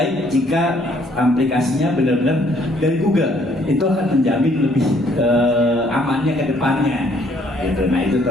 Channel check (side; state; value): both; normal; correlation 0.64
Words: jika aplikasinya benar-benar dari Google, itu akan menjamin lebih amannya ke depannya gitu. Nah itu